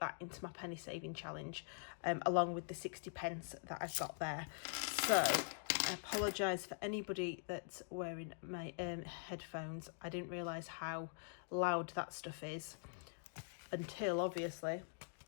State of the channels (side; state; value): right; silent; digital silence